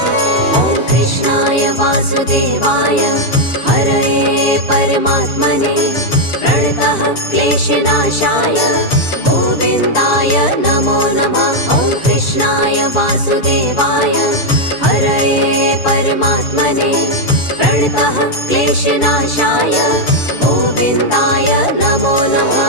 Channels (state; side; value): late; right; 6.9 ms